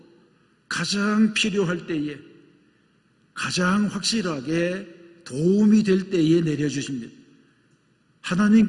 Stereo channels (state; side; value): identical; both; correlation 1.00